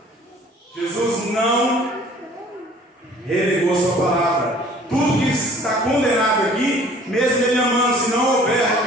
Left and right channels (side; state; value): both; normal; correlation 0.52